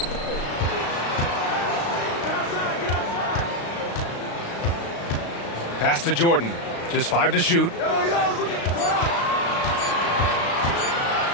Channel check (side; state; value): right; late; 35 ms